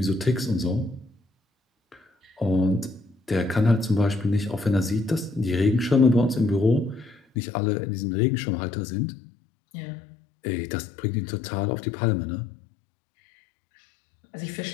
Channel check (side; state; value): right; drops out; at 7.2 s